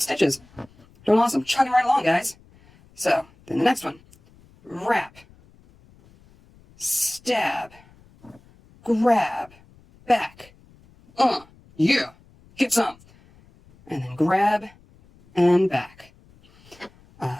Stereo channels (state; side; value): noise; left; rumble, 28 dB below the sound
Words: Doing awesome. Chugging right along, guys. So, then the next one. Wrap, stab, grab, back. Yeah, get some. And then grab and back.